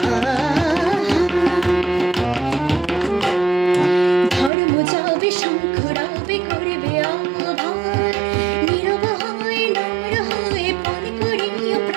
ধর্ম যাবে শঙ্খ রাবে করবে আহ্বান, নীরব হয়ে নম্র হয়ে পান করিও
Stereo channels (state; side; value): drops out; left; at 4.5 s